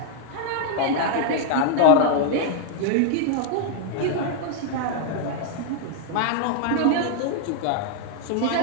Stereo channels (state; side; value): different; both; correlation 0.00